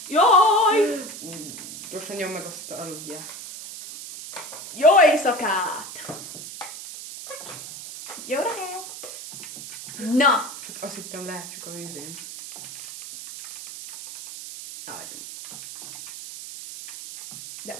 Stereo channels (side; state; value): right; noise; hiss, 11 dB below the sound